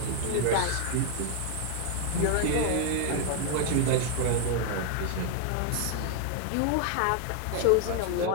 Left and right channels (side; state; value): both; different; correlation 0.00